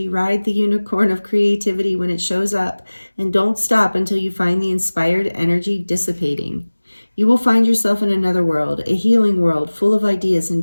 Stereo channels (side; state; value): both; inverted; correlation -1.00